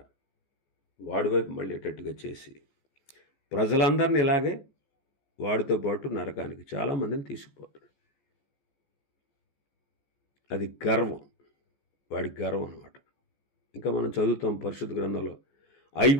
వాడి వైపు మళ్ళేటట్టుగా చేసి ప్రజలందరినీ ఇలాగే వాడితో పాటు నరకానికి చాలామందిని తీసుకుపోతాడు. అది గర్వం, వాడి గర్వం అన్నమాట. ఇంకా మనం చదువుతాం పరిశుద్ధ గ్రంథంలో,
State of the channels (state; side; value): late; right; 14 ms